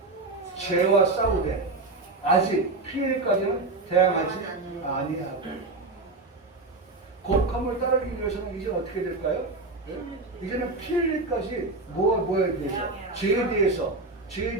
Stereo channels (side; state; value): left; quieter; 3.4 dB